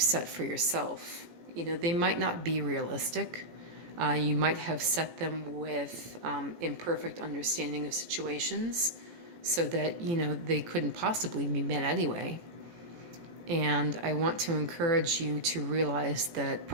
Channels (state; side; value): late; left; 17 ms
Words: for yourself. They might not be realistic. You might have set them with imperfect understanding of situations so that, they couldn't possibly be met anyway. And I want to encourage you to realize that